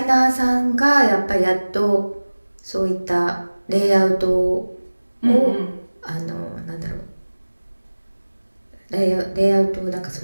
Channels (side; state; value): both; inverted; correlation -1.00